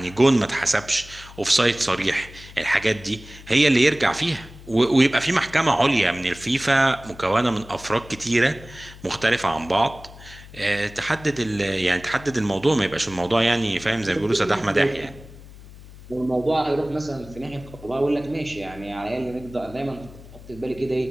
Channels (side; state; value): left; noise; hum, 18 dB below the sound